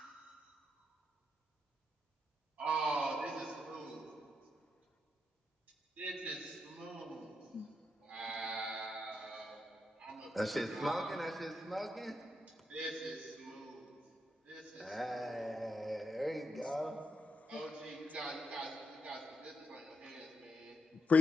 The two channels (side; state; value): both; normal; correlation 0.83